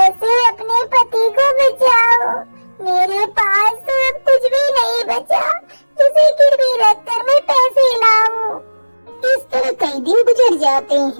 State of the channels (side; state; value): both; inverted; correlation -1.00